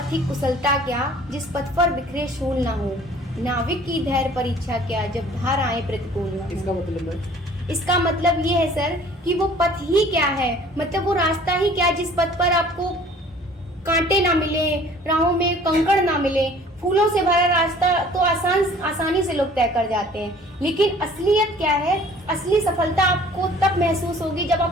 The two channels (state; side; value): normal; both; correlation 0.51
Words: कुशलता क्या, जिस पथ पर बिखरे शूल ना हो, नाविक की धैर्य परीक्षा क्या, जब धार आए प्रतिकूल ना हो। इसका मतलब ये है सर कि वो पथ ही क्या है, मतलब वो रास्ता ही क्या है जिस पथ पर आपको कांटे ना मिले, राहों में कंकड़ ना मिले। फूलों से भरा रास्ता तो आसानी से लोग तय कर जाते हैं, लेकिन असलियत क्या है, असली सफलता आपको तब महसूस होगी जब